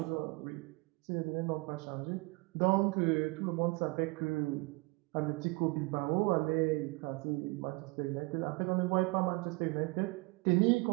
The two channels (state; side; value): quieter; left; 26.1 dB